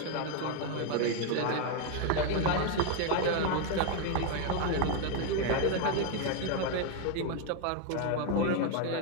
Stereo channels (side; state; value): both; different; correlation 0.01